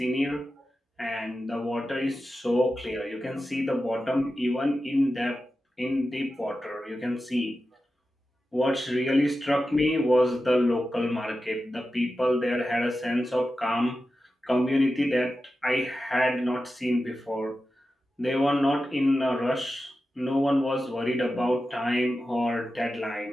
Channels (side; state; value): both; normal; correlation 0.92